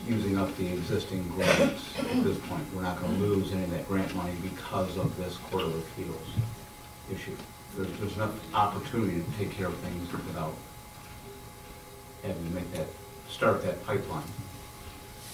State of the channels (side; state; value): both; identical; correlation 1.00